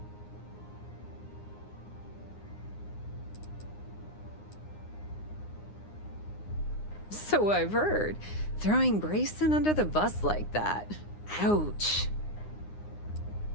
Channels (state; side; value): late; right; 9.7 ms